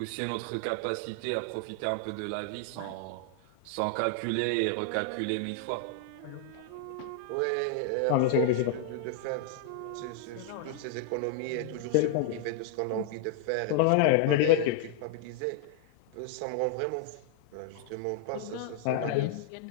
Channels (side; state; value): both; different; correlation 0.00